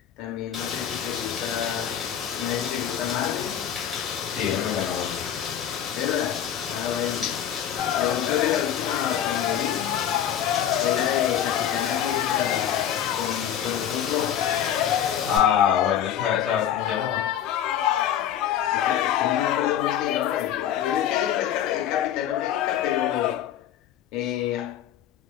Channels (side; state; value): right; quieter; 10.1 dB